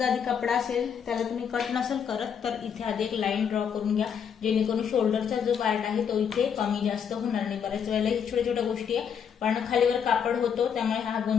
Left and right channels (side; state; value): right; quieter; 7.6 dB